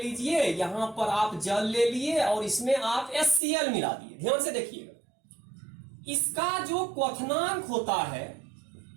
लीजिए, यहां पर आप जल ले लिए और इसमें आप HCl मिला दिए। ध्यान से देखिएगा, इसका जो क्वथनांक होता है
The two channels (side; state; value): left; drops out; at 3.4 s